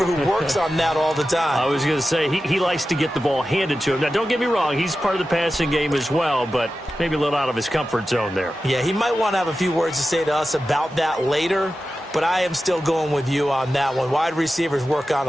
who works on that all the time. I was going to say, he likes to get the ball handed to him. Now, don't get me wrong, he's part of the passing game as well, but maybe a little out of his comfort zone there. Yeah, he might want to have a few words to say to us about that later, but I am still going with you on that one. Wide receivers work on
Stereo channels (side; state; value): both; normal; correlation 0.93